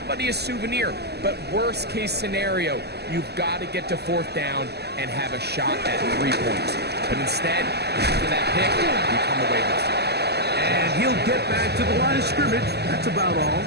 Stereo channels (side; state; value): left; late; 0.48 ms